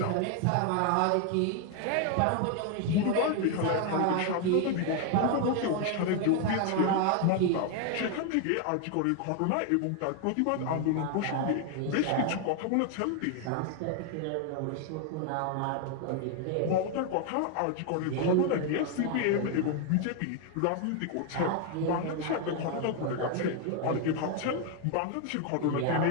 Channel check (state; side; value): different; both; correlation 0.01